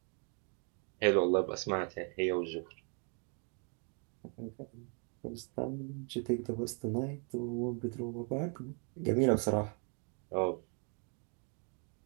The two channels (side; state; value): left; quieter; 38.0 dB